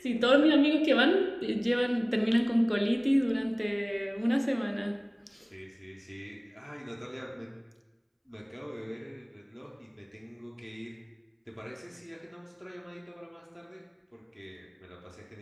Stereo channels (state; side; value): identical; both; correlation 1.00